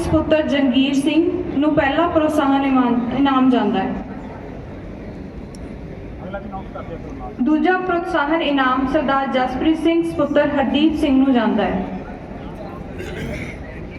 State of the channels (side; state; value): both; identical; correlation 1.00